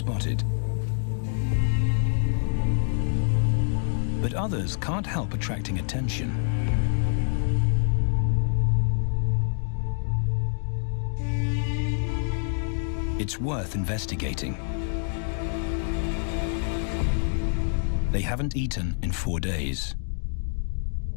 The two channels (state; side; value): silent; right; digital silence